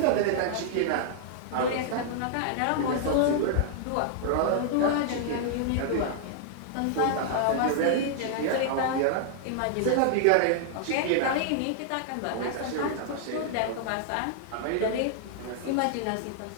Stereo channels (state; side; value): different; both; correlation -0.01